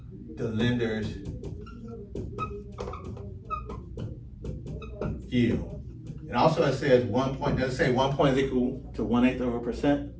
the lender's yield. And also it says 1 point, does it say 1 point is equal to 1/8 of a percent?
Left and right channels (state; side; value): identical; both; correlation 1.00